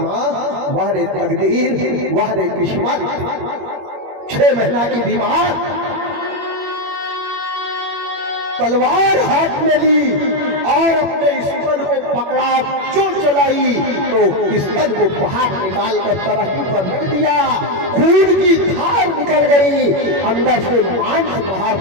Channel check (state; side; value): late; left; 21 ms